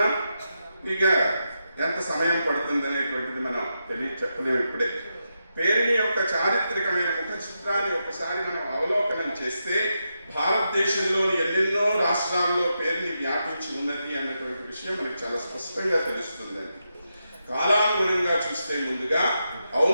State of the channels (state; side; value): inverted; both; correlation -0.86